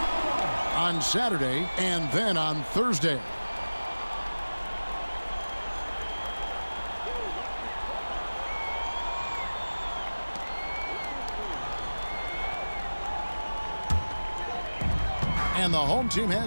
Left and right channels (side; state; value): both; inverted; correlation -1.00